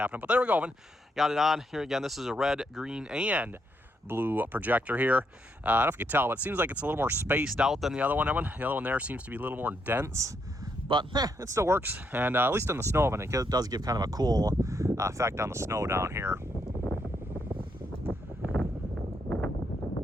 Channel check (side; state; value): both; normal; correlation 0.77